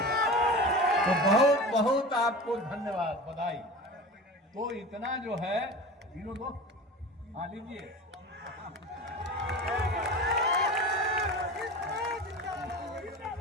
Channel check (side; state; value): both; normal; correlation 0.33